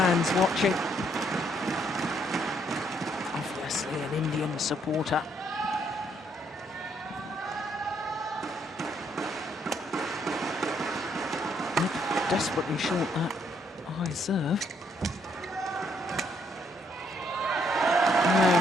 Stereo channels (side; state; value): both; normal; correlation 0.71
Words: watching. Obviously an Indian supporter. Desperately short that high serve. And